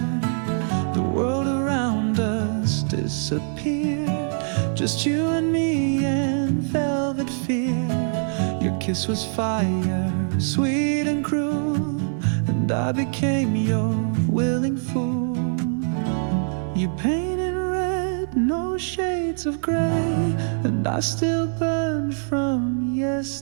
The world around us disappeared, just you and me and velvet fear. Your kiss was fire, sweet and cruel, and I became your willing fool. You painted red, no shades of gray, and I still burn from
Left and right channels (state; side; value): silent; left; 59 dB below the other